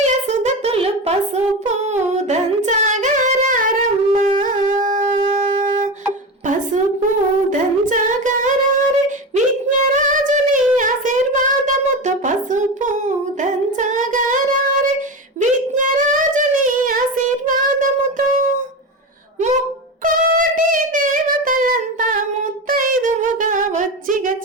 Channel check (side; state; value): both; normal; correlation 0.22